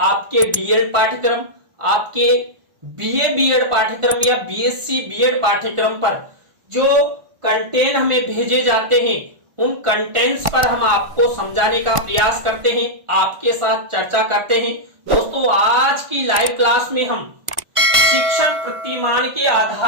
D.Ed पाठ्यक्रम, आपके BA B.Ed पाठ्यक्रम या BSc B.Ed पाठ्यक्रम पर जो कंटेंट हमें भेजे जाते हैं, उन कंटेंट्स पर हम आपको समझाने का प्रयास करते हैं, आपके साथ चर्चा करते हैं। दोस्तों, आज की लाइव क्लास में हम शिक्षण प्रतिमान के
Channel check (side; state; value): left; late; 1.5 ms